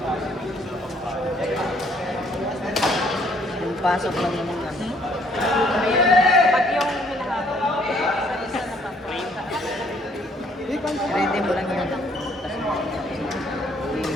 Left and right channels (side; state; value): both; normal; correlation 0.64